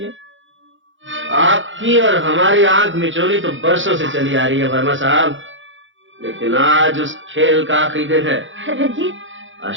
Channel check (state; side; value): late; left; 0.56 ms